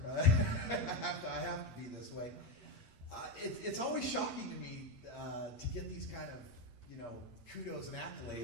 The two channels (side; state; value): right; late; 8.5 ms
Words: I have to be this way. It's always shocking to me to get these kind of, kudos and